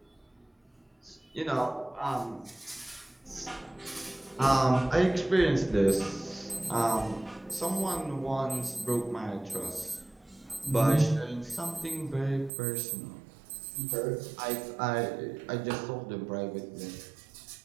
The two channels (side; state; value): left; drops out; at 12.5 s